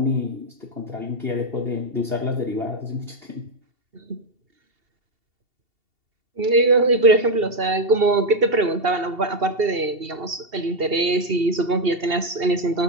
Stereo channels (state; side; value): late; left; 2.7 ms